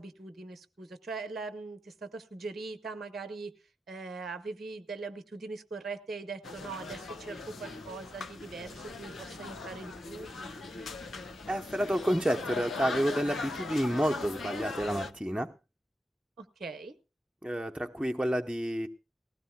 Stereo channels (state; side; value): normal; both; correlation 0.88